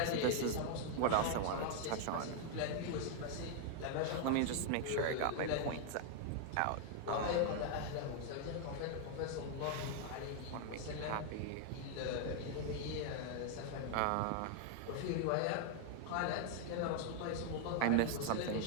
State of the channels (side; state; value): both; different; correlation 0.00